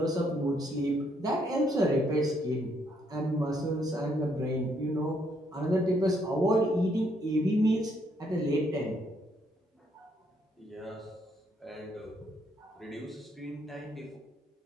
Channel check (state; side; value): normal; both; correlation 0.72